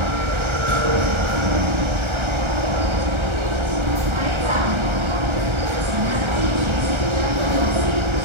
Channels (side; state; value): left; late; 1.3 ms